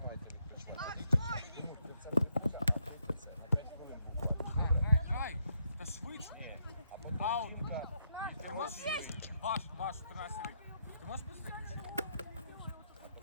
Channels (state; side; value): inverted; both; correlation -0.76